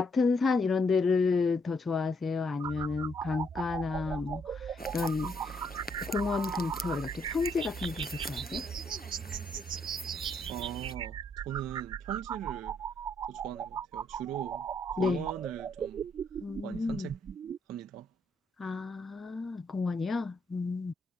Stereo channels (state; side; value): normal; both; correlation 0.72